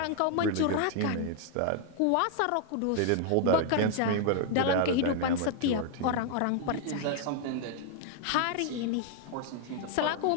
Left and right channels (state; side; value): different; both; correlation 0.00